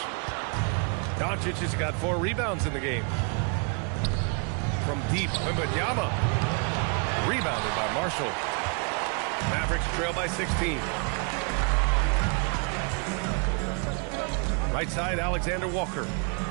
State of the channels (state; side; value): quieter; left; 36.8 dB